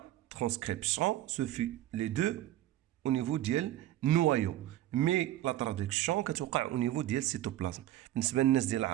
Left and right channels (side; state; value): left; quieter; 14.1 dB